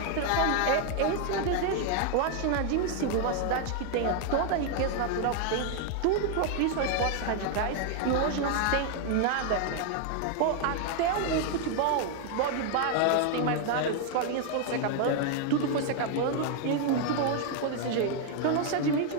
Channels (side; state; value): both; different; correlation 0.00